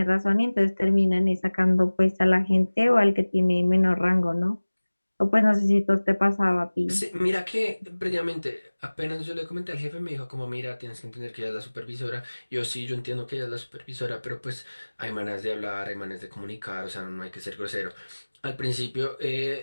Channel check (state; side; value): inverted; both; correlation -1.00